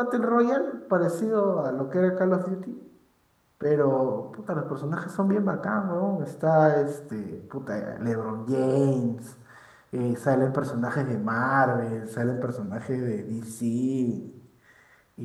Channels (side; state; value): both; identical; correlation 1.00